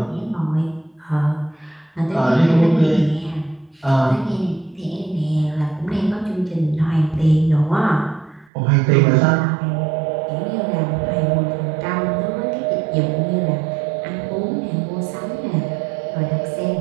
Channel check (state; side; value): drops out; left; at 8.5 s